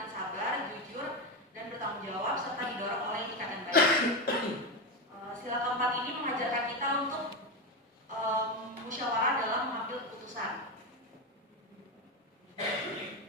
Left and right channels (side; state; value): both; normal; correlation 0.14